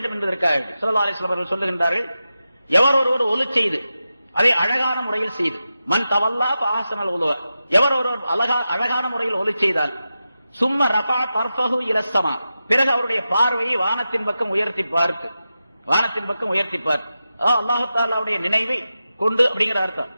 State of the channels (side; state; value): both; inverted; correlation -0.91